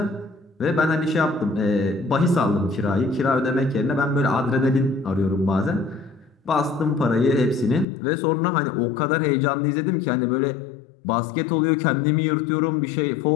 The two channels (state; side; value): drops out; right; at 7.9 s